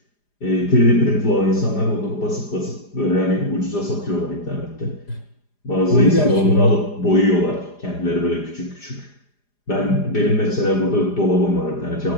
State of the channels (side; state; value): right; late; 4.9 ms